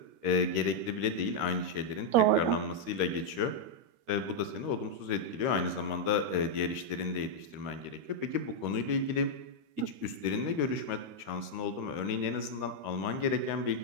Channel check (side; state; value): left; late; 13 ms